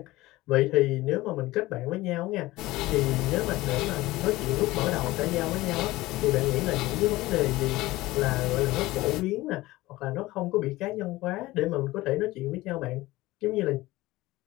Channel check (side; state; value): right; quieter; 18.7 dB